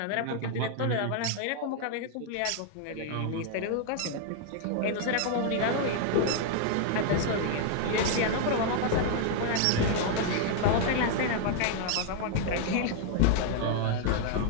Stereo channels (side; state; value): both; different; correlation 0.00